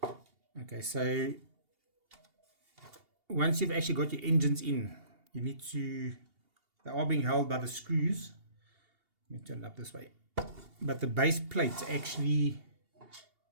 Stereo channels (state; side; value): late; left; 2.8 ms